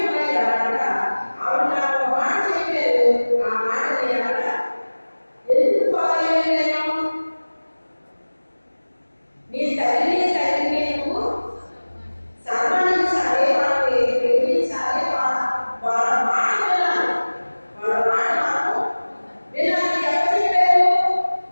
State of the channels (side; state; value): both; inverted; correlation -1.00